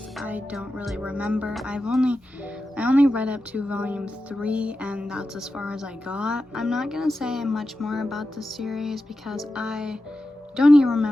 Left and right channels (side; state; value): both; normal; correlation 0.92